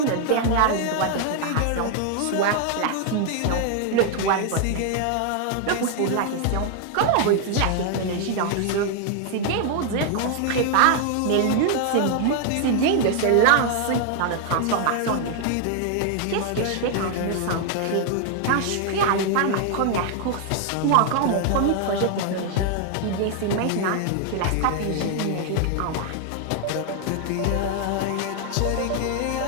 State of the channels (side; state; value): both; different; correlation 0.00